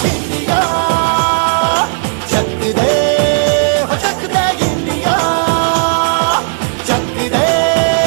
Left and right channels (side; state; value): left; silent; digital silence